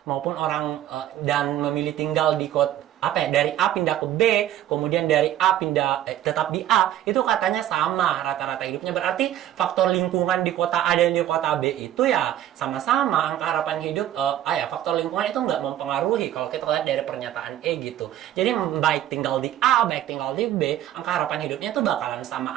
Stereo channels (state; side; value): quieter; left; 12.2 dB